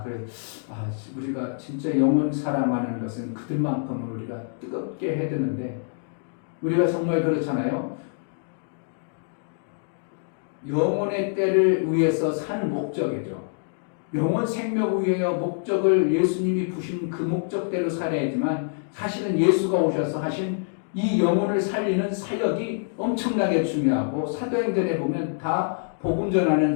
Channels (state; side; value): silent; right; digital silence